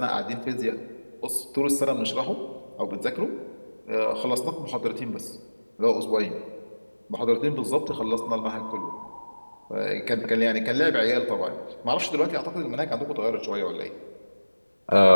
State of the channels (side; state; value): both; inverted; correlation -1.00